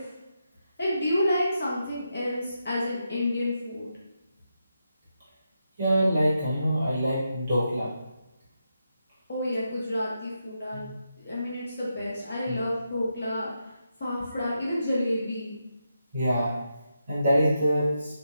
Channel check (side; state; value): both; inverted; correlation -0.85